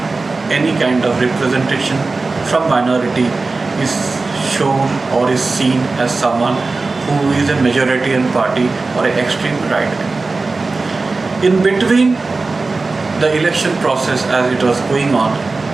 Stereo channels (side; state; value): left; quieter; 3.7 dB